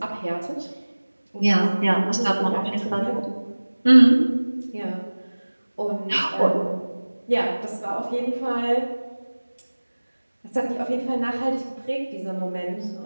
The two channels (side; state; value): both; inverted; correlation -1.00